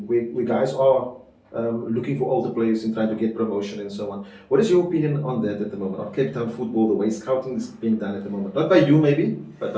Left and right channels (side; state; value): both; identical; correlation 1.00